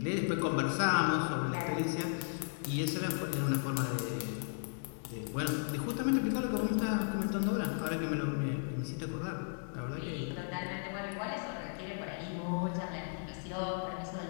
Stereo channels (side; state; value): right; silent; 54 dB below the other